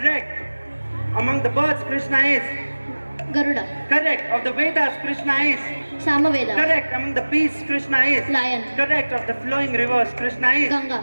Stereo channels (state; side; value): inverted; both; correlation -1.00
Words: Among the birds, Krishna is Garuda. Correct. Of the Vedas, Krishna is Samaveda. Correct. Among the beasts, Krishna is Lion. Correct. Of the flowing rivers, Krishna is Ganga.